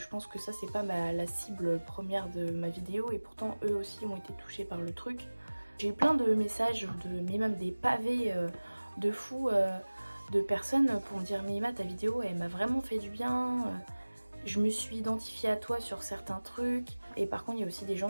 pense que ça c'est pas la cible première de ma vidéo, et pourtant eux aussi ont été touchés par le truc. J'ai eu plein de messages, mais même des pavés de fous de personnes pour me dire mais Emma, ta vidéo elle m'a vraiment fait du bien, je me suis identifiée à toi sur certains trucs. Et par contre il y a aussi des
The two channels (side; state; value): both; inverted; correlation -1.00